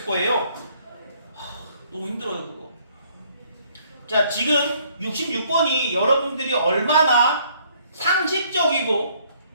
거예요. 너무 힘들어요 그거. 자, 지금 66번이 여러분들이 얼마나 상식적이고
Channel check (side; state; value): both; inverted; correlation -0.64